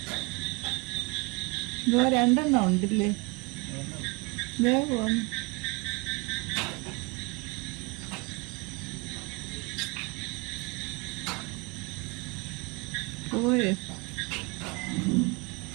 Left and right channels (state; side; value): quieter; left; 28.1 dB